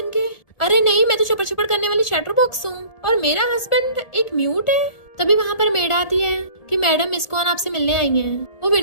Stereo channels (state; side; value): late; right; 1.7 ms